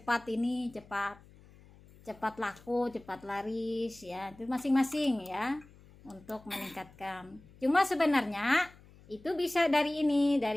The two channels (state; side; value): noise; left; hum, 24 dB below the sound